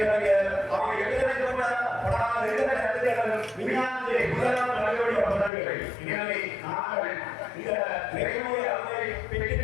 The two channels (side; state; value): right; drops out; at 5.5 s